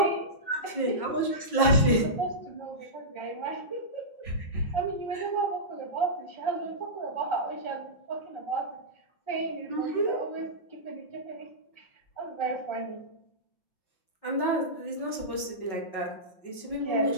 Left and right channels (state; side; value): late; right; 5.4 ms